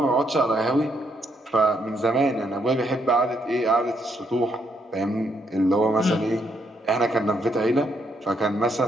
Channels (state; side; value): normal; both; correlation 0.75